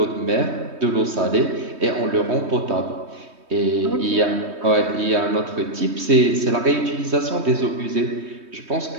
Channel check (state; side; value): late; left; 3.2 ms